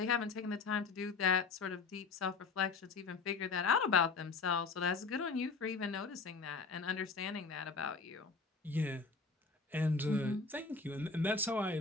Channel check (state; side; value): quieter; right; 4.4 dB